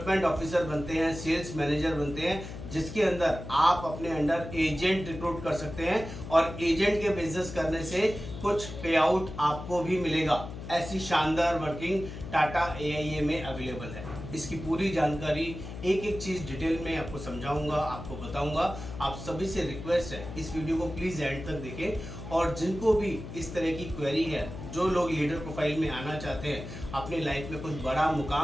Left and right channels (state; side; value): noise; left; hum, 10 dB below the sound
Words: ऑफिसर बनते हैं, सेल्स मैनेजर बनते हैं, जिसके अंदर आप अपने अंडर एजेंट रिक्रूट कर सकते हैं और एजेंट के बिजनेस करने से कुछ पे आउट आपको भी मिलेगा। ऐसी शानदार वर्किंग टाटा AIA में अवेलेबल है। इसकी पूरी जानकारी एक एक चीज़ डिटेल में आपको समझाऊंगा, आपको बताऊंगा। आप सभी से रिक्वेस्ट है, इस वीडियो को प्लीज़ एंड तक देखें और जिनको भी इस तरह की क्वेरी है, जो लोग लीडर प्रोफाइल में आना चाहते हैं, अपनी लाइफ में कुछ बड़ा